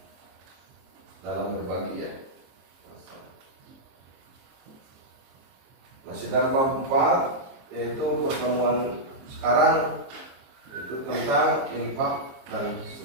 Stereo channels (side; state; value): left; late; 23 ms